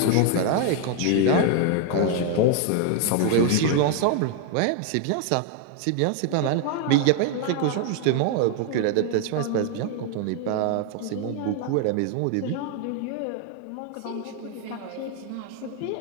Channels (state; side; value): different; both; correlation 0.00